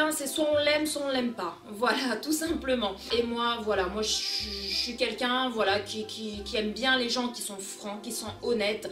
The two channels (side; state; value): both; identical; correlation 1.00